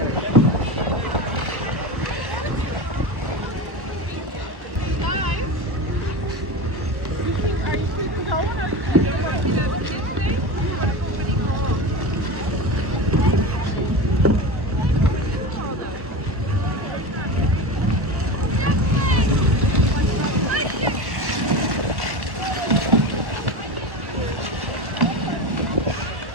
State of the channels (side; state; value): left; late; 1.3 ms